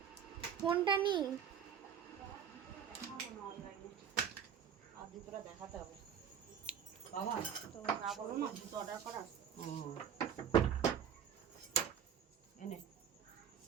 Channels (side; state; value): left; quieter; 8.3 dB